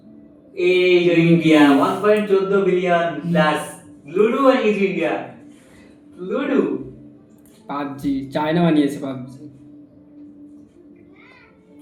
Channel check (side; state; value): both; identical; correlation 1.00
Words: এই যে ইন্ডিয়া 1.14 বিলিয়ন প্লাস লুডো বানিয়েছে ইন্ডিয়া। লুডো পাবজি চায়না বানিয়েছে পাবজি।